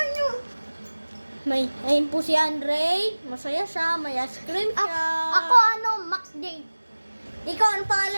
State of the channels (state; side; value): inverted; both; correlation -1.00